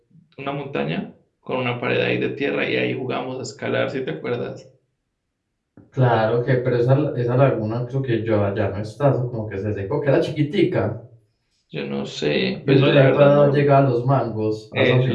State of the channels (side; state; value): both; identical; correlation 1.00